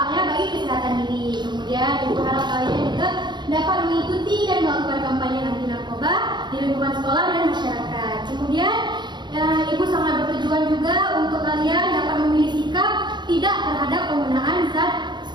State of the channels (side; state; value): left; late; 0.21 ms